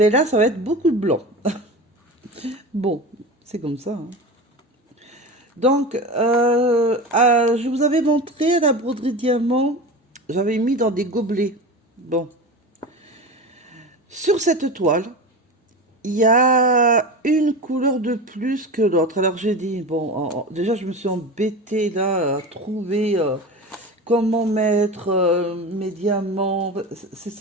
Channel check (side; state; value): both; normal; correlation 0.28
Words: là, ça va être beaucoup de blanc. Bon, c'est comme ça, hein. Donc, je vous avais montré la broderie diamant, j'avais mis dans des gobelets. Bon. Sur cette toile, il y a une couleur de plus que l'autre. Alors j'ai dit, bon, déjà je me suis embêtée là à trouver comment mettre mes diamants.